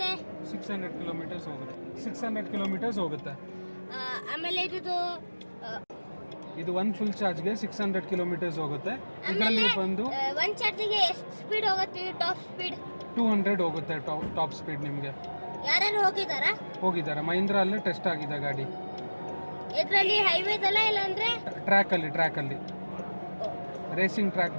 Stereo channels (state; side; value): inverted; both; correlation -1.00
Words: 600 ಕಿಲೋಮೀಟರ್ಸ್ ಹೋಗುತ್ತೆ. 600 ಕಿಲೋಮೀಟರ್ಸ್ ಹೋಗುತ್ತೆ. ಆಮೇಲೆ ಇದು ಒಂದು ಫುಲ್ ಚಾರ್ಜ್ಗೆ 600 ಕಿಲೋಮೀಟರ್ಸ್ ಹೋಗುತ್ತೆ. ಇದರಲ್ಲಿ ಬಂದು ಒಂದು ಚಾರ್ಜಿಗೆ ಎಷ್ಟು ಸ್ಪೀಡ್ ಹೋಗುತ್ತೆ? ಟಾಪ್ ಸ್ಪೀಡ್ 200 ಹೋಗುತ್ತೆ. ಟಾಪ್ ಸ್ಪೀಡ್ ನಿಮಗೆ ಯಾರು ಹೋಗಿದ್ದಾರೆ. ಮಹೀಂದ್ರ ಅಲ್ಲೇ ಟೆಸ್ಟ್ ಆಗಿದೆ ಗಾಡಿ. ಇದರಲ್ಲಿ ಹೈವೇದಲ್ಲ ಇಲ್ಲಾಂದ್ರೆ ಟ್ರ್ಯಾಕಲ್ಲಿ ರೇಸಿಂಗ್ ಟ್ರ್ಯಾಕ್